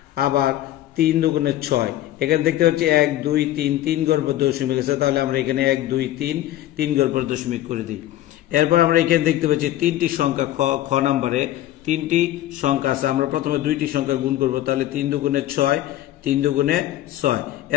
আবার 3 দুগুণে 6। এখানে দেখতে পাচ্ছি 1 2 3 3 ঘর পর দশমিক আছে, তাহলে আমরা এখানে 1 2 3 3 ঘর পর দশমিক করে দিই। এরপর আমরা এখানে দেখতে পাচ্ছি 3টি সংখ্যা খ নম্বরে 3টি সংখ্যা আছে। আমরা প্রথমে 2টি সংখ্যা গুণ করব, তাহলে 3 দুগুণে 6 3 দুগুণে 6।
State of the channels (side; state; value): right; quieter; 13.9 dB